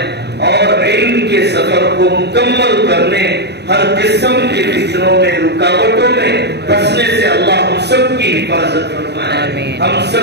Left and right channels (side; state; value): left; late; 0.49 ms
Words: اور علم کے سفر کو مکمل کرنے, ہر قسم کے فتنوں میں, رکاوٹوں میں پھنسنے سے اللہ ہم سب کی حفاظت فرمائے, ہم